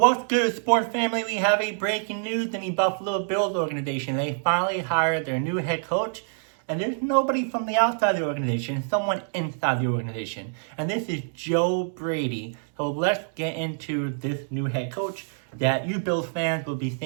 good, sports family? We have a breaking news in the Buffalo Bills organization. They finally hired their new head coach, and there's nobody from the outside of the organization, someone inside the organization. And this is Joe Brady. So let's get into this new head coach that you Bills fans will be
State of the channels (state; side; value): silent; left; 61 dB below the other